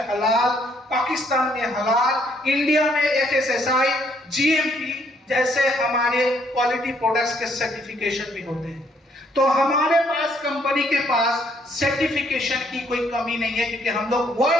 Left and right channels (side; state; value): both; normal; correlation 0.68